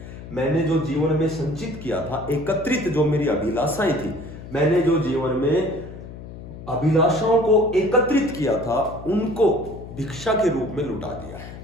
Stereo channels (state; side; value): noise; left; hum, 13 dB below the sound